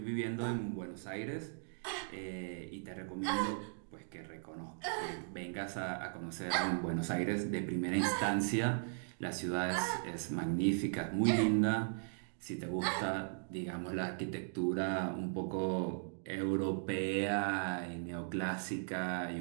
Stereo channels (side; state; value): left; silent; digital silence